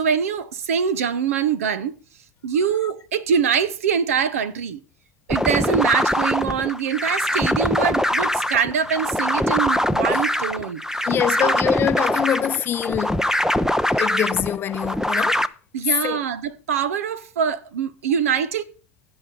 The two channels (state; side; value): normal; both; correlation 0.37